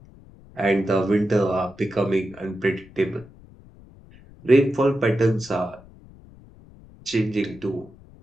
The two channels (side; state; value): left; noise; rumble, 23 dB below the sound